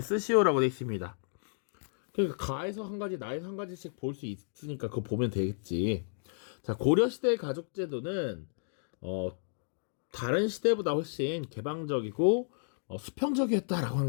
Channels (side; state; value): right; silent; digital silence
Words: 쓰시오라고 되어 있습니다. 그러니까 가에서 한 가지, 나에서 한 가지씩 볼 수 있으니까 그거 보면 되겠지. 자, 고려시대의 가족제도는 다른 시대보다 훨씬 개방적이고 수평적이었다라고 하는